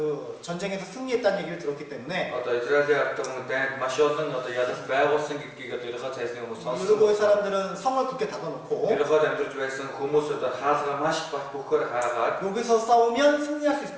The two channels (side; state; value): both; identical; correlation 1.00